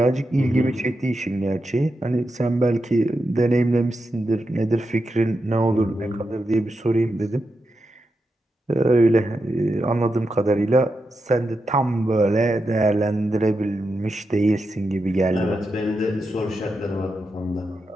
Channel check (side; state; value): both; normal; correlation 0.87